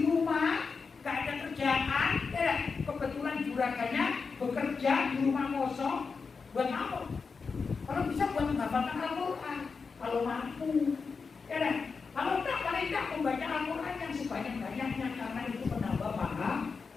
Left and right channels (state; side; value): quieter; right; 5.0 dB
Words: rumah nggak ada kerjaan, ya kebetulan juragannya bekerja di rumah kosong, buat apa? Kalau bisa buat menghafalkan Al-Quran, kalau mampu, ya kalau tak paling tak membaca Al-Quran yang sebanyak-banyaknya karena itu menambah paham.